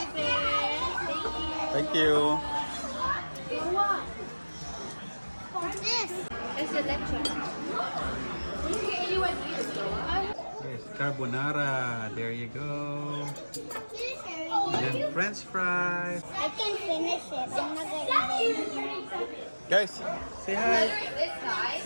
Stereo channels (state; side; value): inverted; both; correlation -1.00